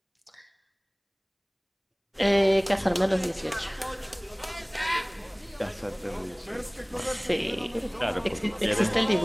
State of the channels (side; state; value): both; identical; correlation 1.00